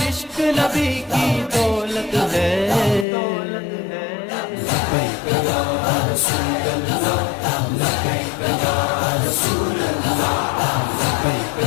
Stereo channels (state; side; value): drops out; right; at 3.1 s